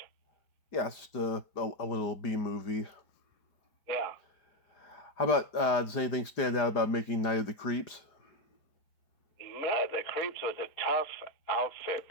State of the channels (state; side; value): late; right; 4.9 ms